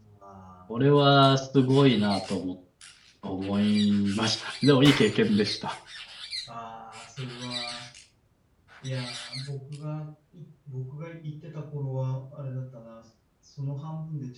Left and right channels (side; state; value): both; identical; correlation 1.00